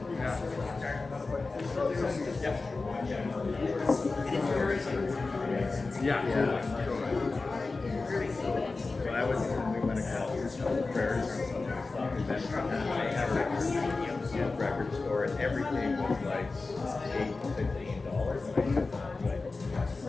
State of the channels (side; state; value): right; quieter; 3.8 dB